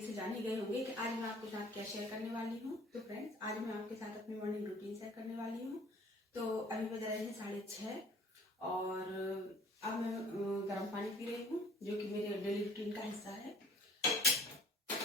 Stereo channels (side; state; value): both; normal; correlation 0.51